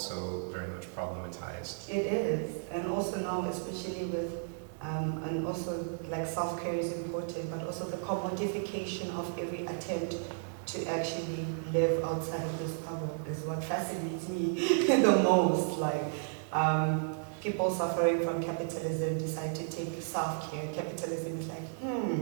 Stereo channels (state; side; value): silent; left; digital silence